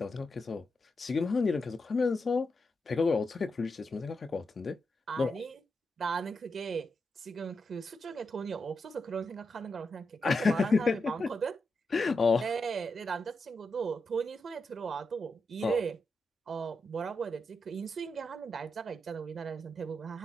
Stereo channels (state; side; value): normal; both; correlation 0.86